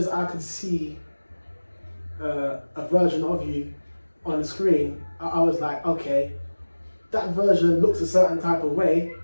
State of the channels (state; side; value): inverted; both; correlation -1.00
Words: I could see a version of you on the screen, I was like, okay, that version looks a certain type of way,